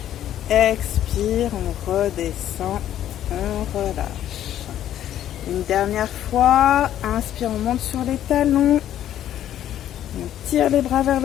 Expire, on redescend, on relâche. Une dernière fois, inspire, on monte sur les talons. On tire les bras vers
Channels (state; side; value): quieter; right; 11.4 dB